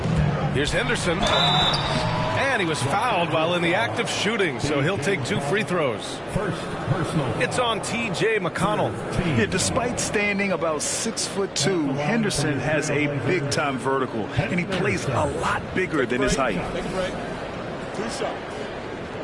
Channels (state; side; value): identical; both; correlation 1.00